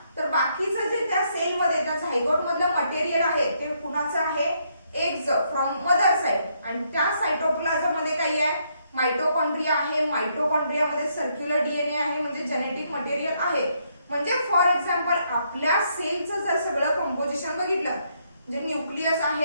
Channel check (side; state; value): both; inverted; correlation -0.74